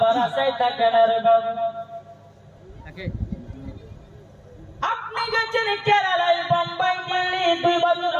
আশায় থাকে না রে বাবা। আপনি গেছেন কেরালায়, বোম্বাই, দিল্লি, 2 বছর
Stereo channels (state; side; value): identical; both; correlation 1.00